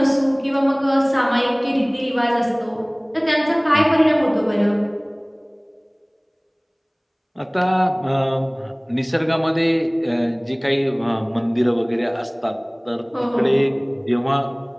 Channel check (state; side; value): identical; both; correlation 1.00